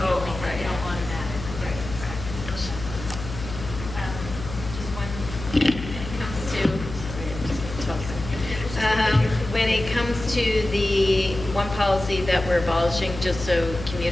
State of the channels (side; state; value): left; noise; hum, 9 dB below the sound